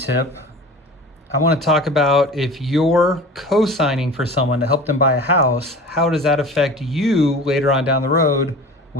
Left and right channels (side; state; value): both; normal; correlation 0.37